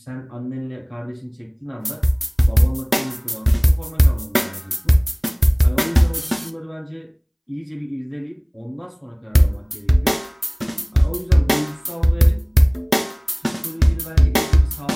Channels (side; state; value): both; identical; correlation 1.00